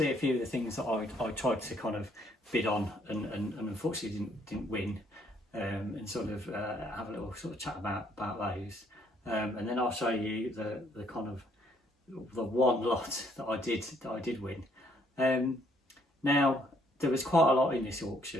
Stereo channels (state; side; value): normal; both; correlation 0.67